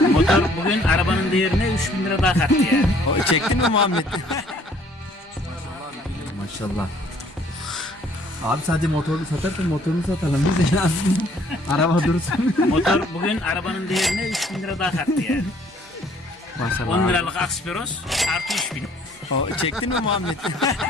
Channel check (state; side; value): normal; both; correlation 0.60